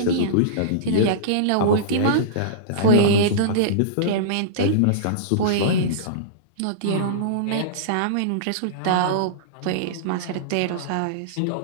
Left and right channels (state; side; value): different; both; correlation -0.04